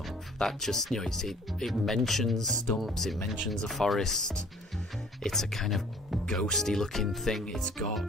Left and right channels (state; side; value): normal; both; correlation 0.54